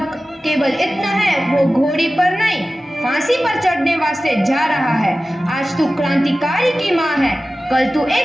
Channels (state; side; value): normal; both; correlation 0.96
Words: केवल इतना है, वो घोड़ी पर नहीं फांसी पर चढ़ने वास्ते जा रहा है। आज तू क्रांतिकारी की माँ है, कल तू